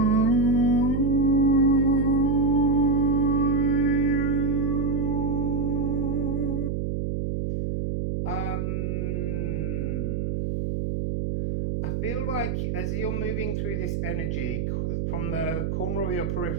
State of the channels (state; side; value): noise; right; hum, 1 dB below the sound